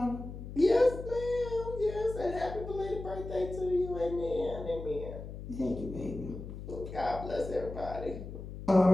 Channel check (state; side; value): noise; left; hum, 10 dB below the sound